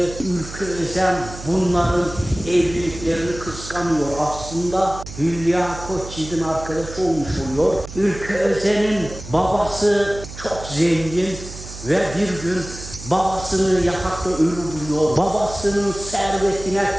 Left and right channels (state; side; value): noise; right; hum, 13 dB below the sound